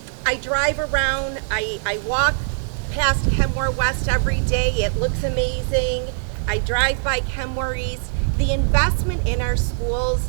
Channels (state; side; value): silent; left; digital silence